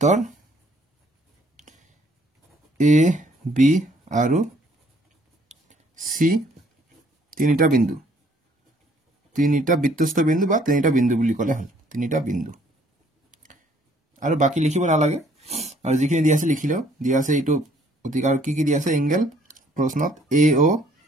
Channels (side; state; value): both; normal; correlation 0.62